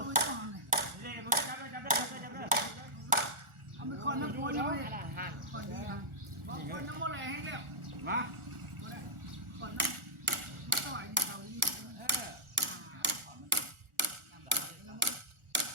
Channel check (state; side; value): late; left; 1.4 ms